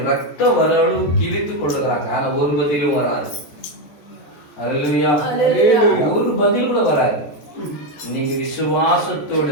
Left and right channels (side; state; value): right; late; 14 ms